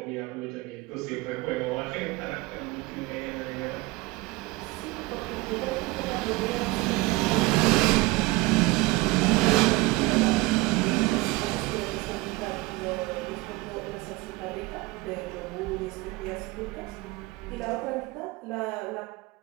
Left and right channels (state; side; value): quieter; left; 21.5 dB